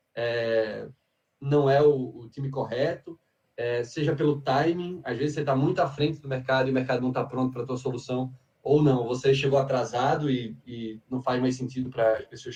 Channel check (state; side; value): identical; both; correlation 1.00